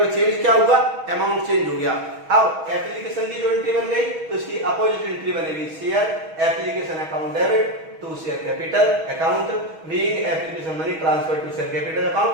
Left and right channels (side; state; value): left; late; 6.3 ms